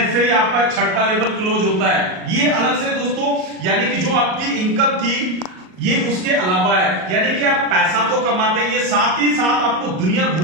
ही आपका छठवां लेवल क्लोज होता है, ये अलग से दोस्तों, यानी कि जो आपकी इनकम थी ये उसके अलावा है, यानी कि आप पैसा तो कमाते हैं, ये साथ ही साथ आपको दुनिया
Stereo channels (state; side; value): late; left; 38 ms